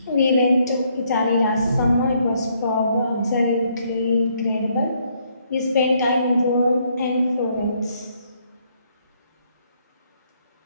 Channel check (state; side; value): inverted; both; correlation -0.70